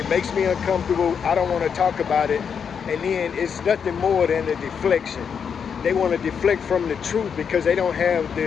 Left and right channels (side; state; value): right; quieter; 6.9 dB